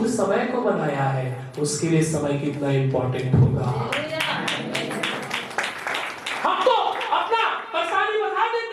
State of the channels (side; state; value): both; identical; correlation 1.00